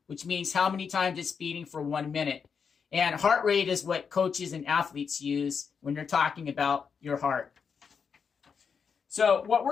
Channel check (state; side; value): quieter; right; 6.2 dB